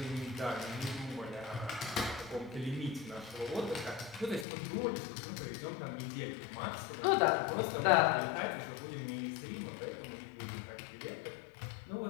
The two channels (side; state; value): right; drops out; at 4.5 s